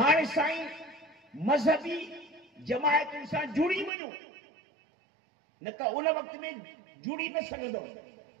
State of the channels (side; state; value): left; drops out; at 3.9 s